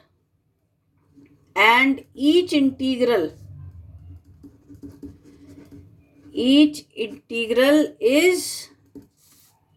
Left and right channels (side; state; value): both; identical; correlation 1.00